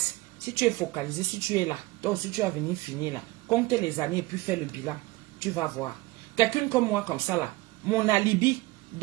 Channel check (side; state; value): left; quieter; 20.6 dB